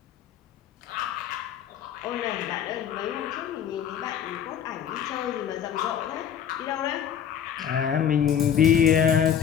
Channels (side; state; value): right; quieter; 8.8 dB